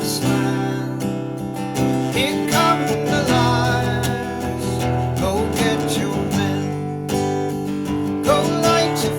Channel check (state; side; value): identical; both; correlation 1.00